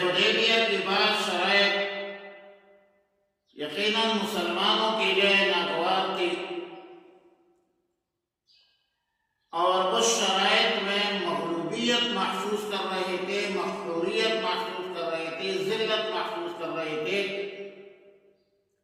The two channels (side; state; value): both; identical; correlation 1.00